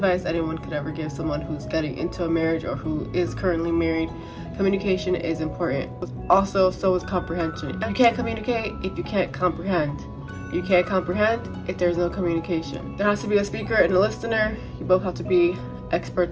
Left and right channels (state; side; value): identical; both; correlation 1.00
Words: anyone could ever give someone who's getting into a marriage or who is currently married. Communication is important. Also, so is comprehension. You can't communicate if you can't comprehend. You can't comprehend if there's no communication. There has to be a speaker and a listener. You both have to be